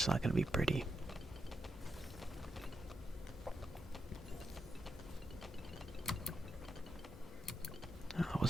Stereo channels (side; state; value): both; normal; correlation 0.84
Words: not going to be pretty. Oh, it